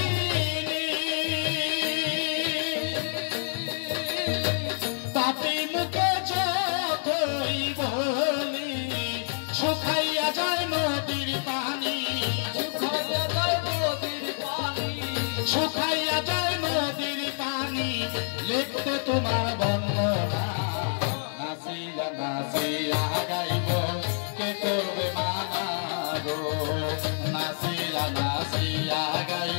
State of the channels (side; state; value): right; silent; digital silence